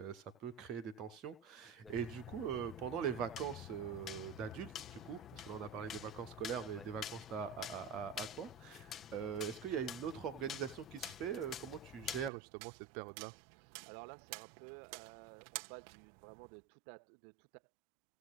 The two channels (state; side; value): drops out; left; at 12.3 s